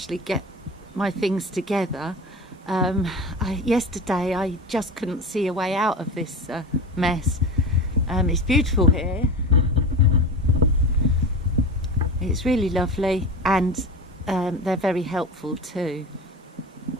get my things together. Yesterday I just couldn't see a way out of this mess. It's beautiful here. It's really lovely, and they're very helpful too.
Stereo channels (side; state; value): both; normal; correlation 0.28